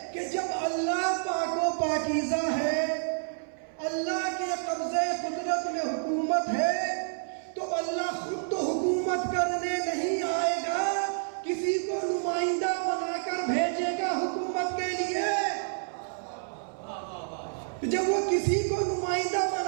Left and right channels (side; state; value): left; silent; 58 dB below the other